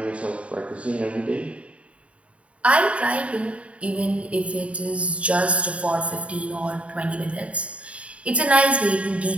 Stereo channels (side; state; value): left; late; 0.063 ms